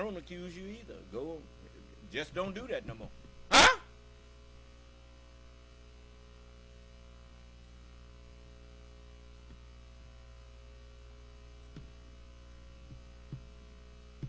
accuse you either. Go, just don't do that no more. Huh?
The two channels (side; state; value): both; identical; correlation 1.00